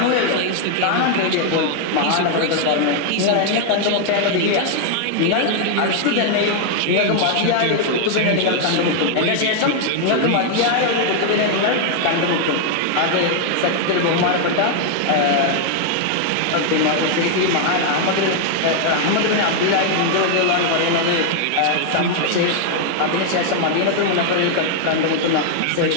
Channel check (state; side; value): different; both; correlation 0.00